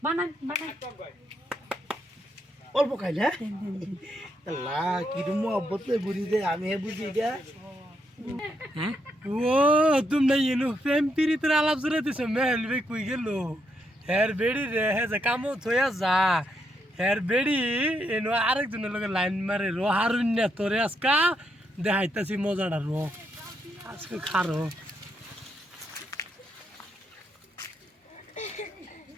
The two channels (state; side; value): normal; both; correlation 0.79